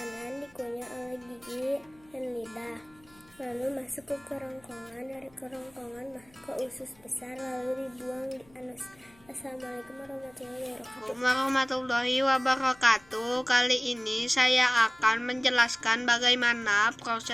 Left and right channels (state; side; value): noise; left; hum, 29 dB below the sound